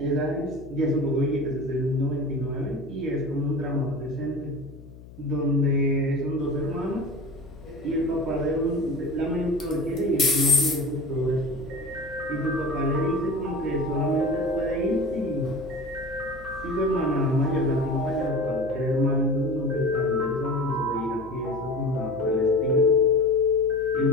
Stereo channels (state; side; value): noise; left; hum, 18 dB below the sound